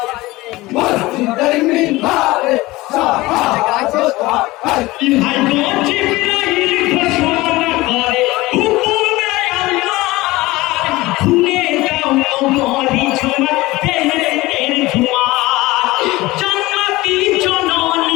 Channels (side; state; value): right; quieter; 19.7 dB